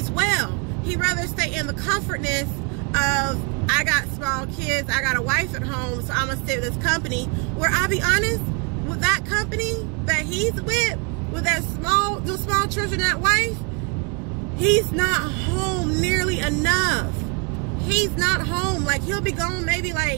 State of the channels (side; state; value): left; quieter; 33.3 dB